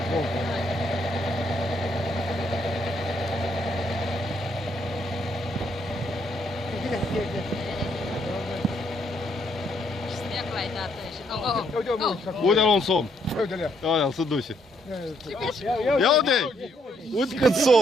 pompa. Снег лай дată și... Uite-l un somn. Uite-le. Aia, se duce. Ia uite! Uite cât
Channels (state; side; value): normal; both; correlation 0.72